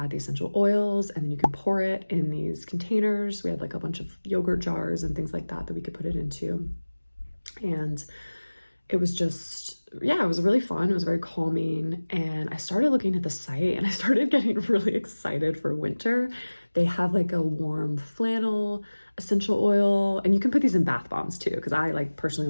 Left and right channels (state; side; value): inverted; both; correlation -1.00